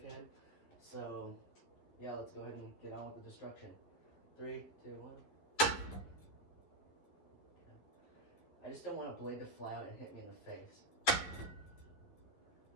So yeah, let's go ahead and get on with the destruction. 3, 2, 1. Okay. I just don't want a blade to fly out and hit me in the face.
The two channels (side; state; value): right; late; 12 ms